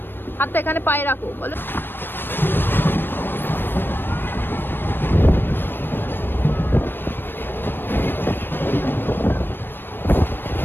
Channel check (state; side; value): late; right; 0.097 ms